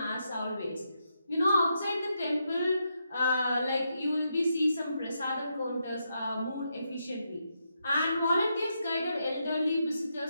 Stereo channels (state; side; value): inverted; both; correlation -0.82